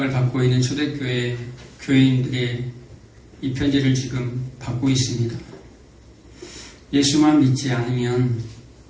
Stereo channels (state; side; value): identical; both; correlation 1.00